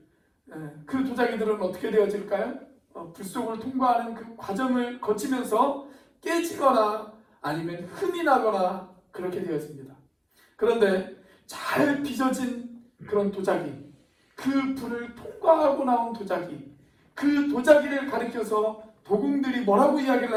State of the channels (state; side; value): identical; both; correlation 1.00